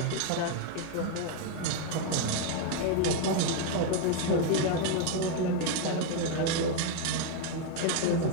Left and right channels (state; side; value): different; both; correlation 0.01